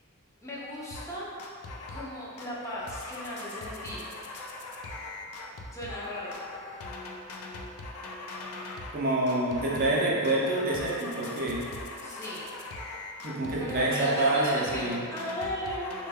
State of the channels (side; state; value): both; normal; correlation -0.06